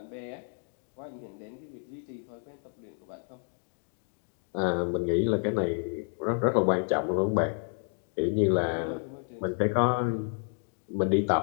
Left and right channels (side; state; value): right; silent; 55 dB below the other